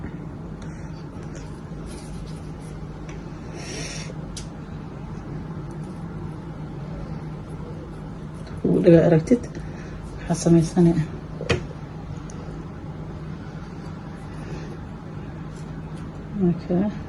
dhaga aragtid waxaa samaysanaya okay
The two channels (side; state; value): both; identical; correlation 1.00